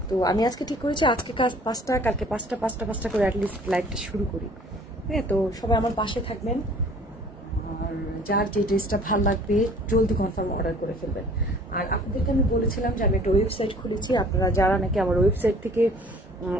তো আমি আজকে ঠিক করেছি আজকে 5টা, কালকে 5টা করে অ্যাটলিস্ট লাইভটা শুরু করি। হ্যাঁ, তো সবাই আমার পাশে থাকবেন, আর যার যে ড্রেসটা ভালো লাগবে জলদি কনফার্ম অর্ডার করে ফেলবেন। আর আপনাদেরকে আমি বলেছিলাম যে আমি একটা ওয়েবসাইট খুলেছি, আপনারা যারা নাকি আমার ওয়েবসাইট থেকে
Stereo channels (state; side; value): normal; both; correlation 0.51